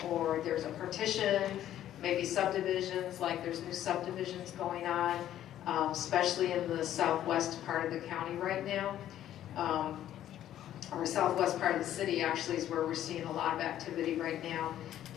or there's a partition, maybe subdivisions, like there's new subdivisions going on, especially in the southwest part of the county right now. Or southwest part of the city actually is where we're seeing a lot of activity right now.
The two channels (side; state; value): right; quieter; 11.9 dB